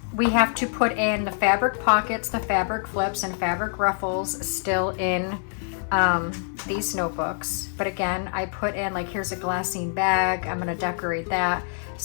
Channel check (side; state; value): right; silent; 59 dB below the other